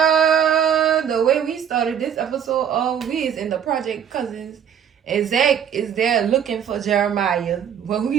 the way we started this episode, all we is in the project, cousins. And Zach is there looking for Jeremiah. When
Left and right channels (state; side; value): quieter; left; 8.5 dB